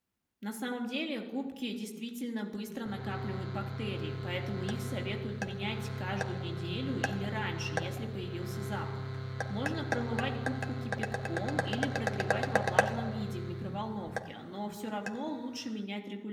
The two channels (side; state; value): both; identical; correlation 1.00